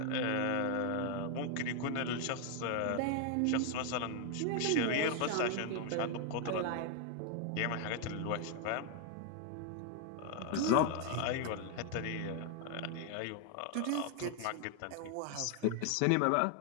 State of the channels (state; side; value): different; both; correlation 0.00